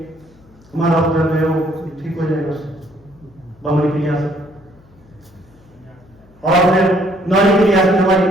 हमारा उदर जो है वो ठीक हो जाएगा उससे, बमनी क्रिया से। और फिर नौली क्रिया से हमारी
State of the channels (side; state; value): left; noise; hum, 28 dB below the sound